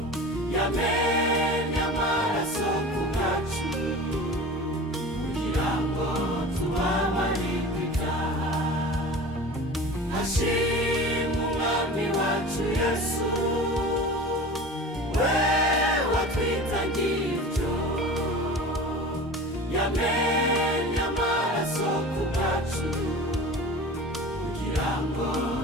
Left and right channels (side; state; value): both; normal; correlation 0.36